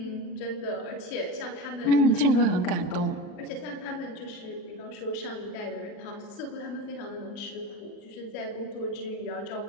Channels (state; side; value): late; right; 39 ms